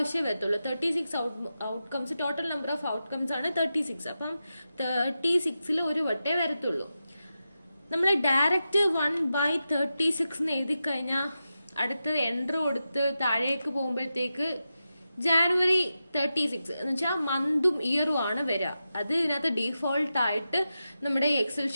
വരത്തുള്ളൂ. 36 outcomes, total number of outcomes ആണ് 36. അപ്പം 36 ഒരു വട്ടേ വരത്തുള്ളൂ. നമ്മൾ ഡയറക്റ്റ് 1/36 എഴുതി കഴിഞ്ഞാൽ അടുത്ത എൻട്രി കൊടുത്ത് താഴേക്ക് പോകുമ്പോഴത്തേക്ക് ജാനുവരി 36 എന്ന് വെച്ചാൽ മന്തും ഇയറും ആണ് വരിക. അത് ഇതിനകത്ത് ഡീഫോൾട്ട് ആയിട്ട് നമ്മുടെ എക്സൽ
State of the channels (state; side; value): inverted; both; correlation -0.90